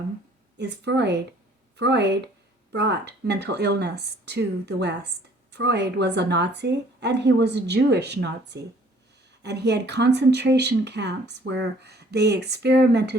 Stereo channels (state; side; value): normal; both; correlation 0.57